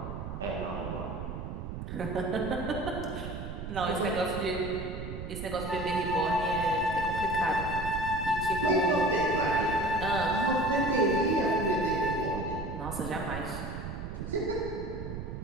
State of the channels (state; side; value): noise; right; rumble, 7 dB below the sound